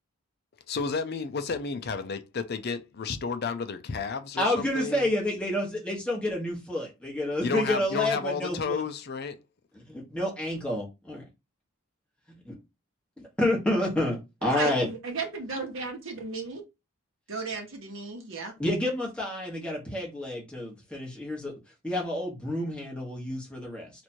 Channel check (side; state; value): both; normal; correlation 0.53